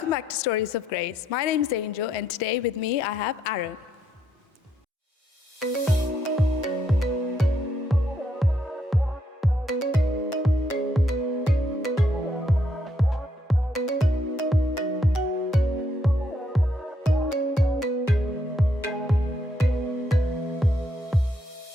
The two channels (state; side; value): normal; both; correlation 0.75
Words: back to Stories of Grace. My name is Angel, and today with me I have Aaron.